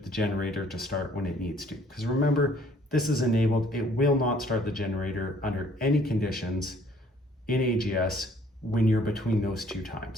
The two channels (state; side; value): normal; both; correlation 0.59